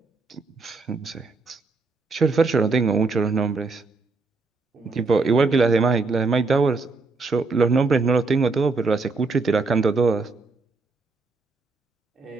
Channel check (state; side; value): quieter; left; 3.9 dB